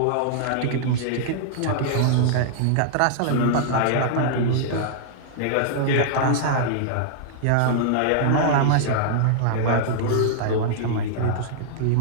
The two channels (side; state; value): both; different; correlation -0.01